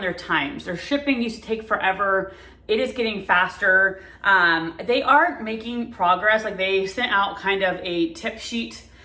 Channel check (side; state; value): both; identical; correlation 1.00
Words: their times. Their shipping used to take forever. It is getting faster. They are making progress. Like they sent out kind of a tip sheet